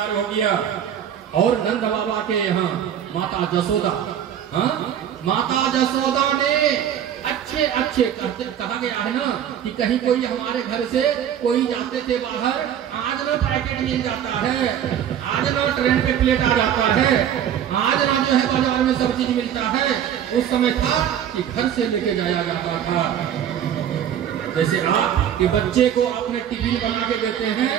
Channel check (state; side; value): quieter; left; 9.7 dB